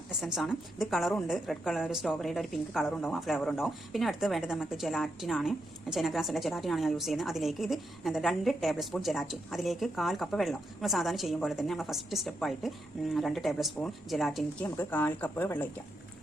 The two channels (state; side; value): normal; both; correlation 0.83